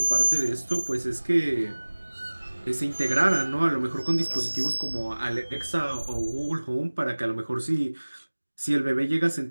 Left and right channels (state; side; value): inverted; both; correlation -1.00